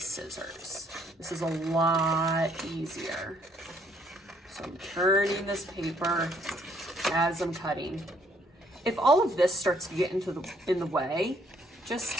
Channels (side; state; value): both; normal; correlation 0.66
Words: This is a lot easier. So I'm turning this paper as I'm cutting. If all of this starts to get in the way,